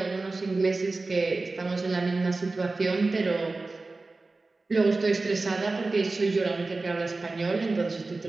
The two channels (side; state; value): left; quieter; 3.5 dB